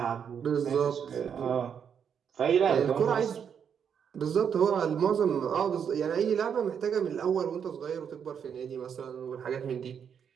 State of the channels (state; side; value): quieter; left; 7.6 dB